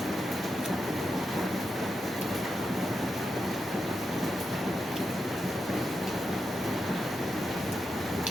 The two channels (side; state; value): both; normal; correlation 0.87